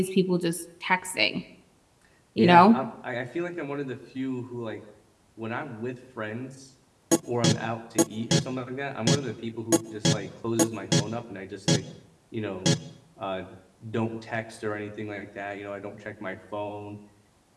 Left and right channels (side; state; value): both; identical; correlation 1.00